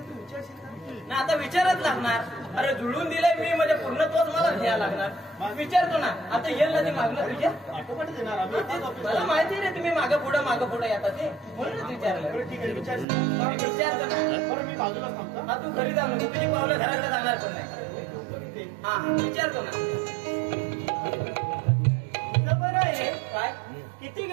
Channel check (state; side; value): drops out; left; at 13.1 s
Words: तू विचारशील का? ना आता विचारच लागणार. अरे जुळून दिलंय मी म्हणजे पूर्ण तोच मला घ्यायला लागणार. विचारतो ना आता येईल ना ते मागणं तुझ्या. आटोपाट देणार आम्ही. मला माहिती रे तुम्ही मागं पुढं येतात ते म्हणूनच विचारलं. बरं ठीक आहे विचार. विचारतो ना. बरं मी बाजूला थांबतो. हा तू घरी जा म्हणजे तुझी पावलं घराकडे जाणार पण नाही. हा विचारतो ना. बरं आहे. काय किती